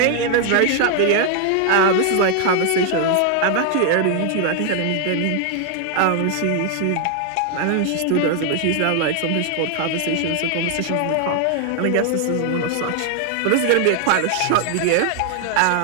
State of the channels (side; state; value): both; different; correlation 0.00